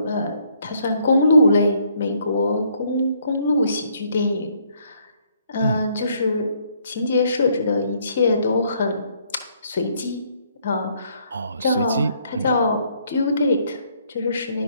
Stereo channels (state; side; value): inverted; both; correlation -0.68